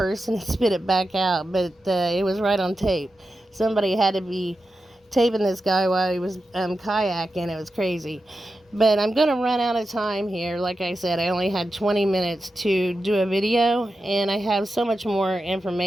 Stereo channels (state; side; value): normal; both; correlation 0.91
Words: and spit it back out. But it was right on tape. Somebody had to be taping this guy while he was kayaking. It was crazy. But I'm going to run out of time here. Like I said, I only had 20 minutes to do a video, and I have so much more